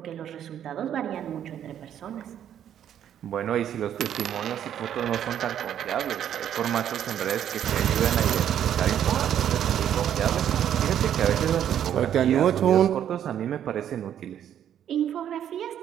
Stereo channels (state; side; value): quieter; left; 10.0 dB